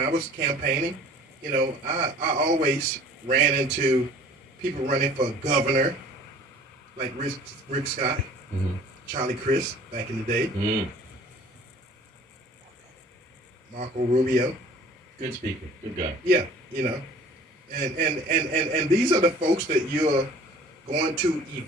was campaigning, I always ran into people running for governor, like Rick Scott, Charlie Crist back in the day, Marco Rubio. Good speaker, good guy. Yeah, and these are the folks that you're going to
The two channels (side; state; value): both; normal; correlation 0.49